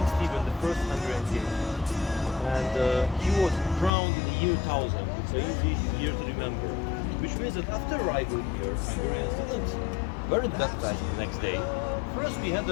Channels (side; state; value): right; drops out; at 3.9 s